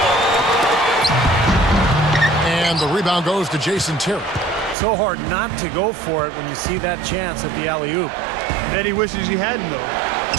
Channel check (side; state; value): left; drops out; at 4.8 s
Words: And the rebound goes to Jason Terry. So hard not to go for it when you see that chance at the alley-oop. Bet he wishes he hadn't, though.